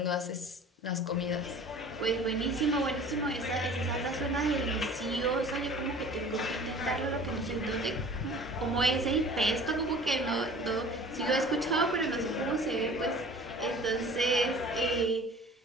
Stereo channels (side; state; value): both; normal; correlation 0.45